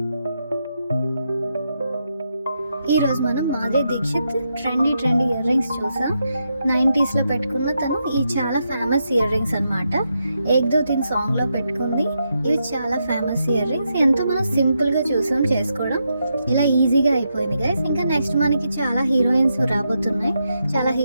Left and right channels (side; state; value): both; inverted; correlation -0.83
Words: ఈరోజు మనం Madhuri Dikshit trendy ear rings చూసాం. 90sలో పెట్టుకున్న తను ఈ చాలా ఫేమస్ ఇయర్ రింగ్స్ అనమాట. ఏక్ దో తీన్ సాంగ్లో పెట్టుకుంది. ఇవి చాలా ఫేమస్ ఇయర్ రింగ్స్. ఎంతో మనం సింపుల్గా చూసాం చేసుకోవడం. ఇలా ఈజీగా అయిపోయింది గైస్. ఇంకా నెక్స్ట్ మనకి చాలా హీరోయిన్స్ రాబోతున్నాయి. చాలా